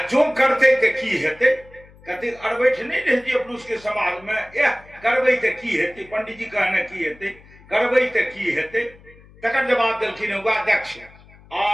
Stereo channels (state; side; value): noise; left; hum, 24 dB below the sound